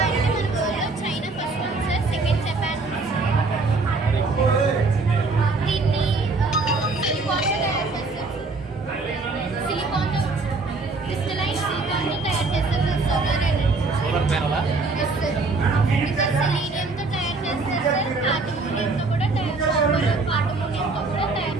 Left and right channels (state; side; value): quieter; left; 3.7 dB